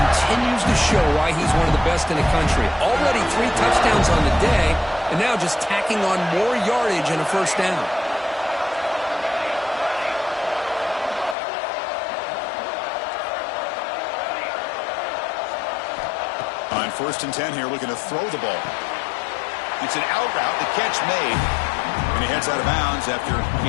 to show why he's one of the best in the country. Already 3 touchdowns on the day, and now just tacking on more yardage and a first down. On 1st and 10 here, looking to throw the ball. It's an out route, the catch made, and he heads out of bounds after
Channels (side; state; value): right; drops out; at 11.4 s